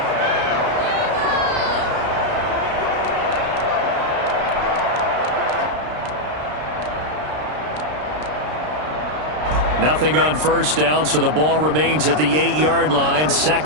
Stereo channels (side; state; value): left; late; 33 ms